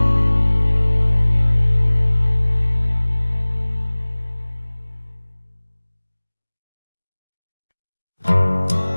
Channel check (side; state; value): both; inverted; correlation -1.00